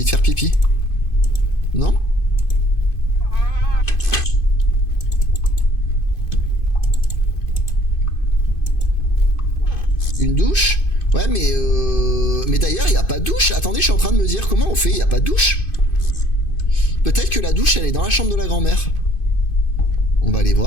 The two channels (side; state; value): right; late; 2.5 ms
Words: de faire pipi. Non? Une douche? Ouais mais d'ailleurs il n'y a pas de douche. Attendez, je suis en train de me dire comment on fait, il n'y a pas de douche. Peut-être que la douche elle est dans la chambre de la grand-mère. On va aller